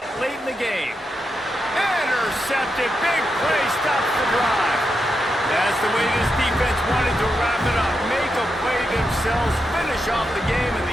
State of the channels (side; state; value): both; normal; correlation 0.85